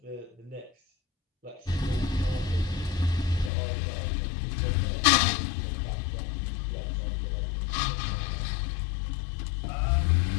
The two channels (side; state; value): right; drops out; at 3.5 s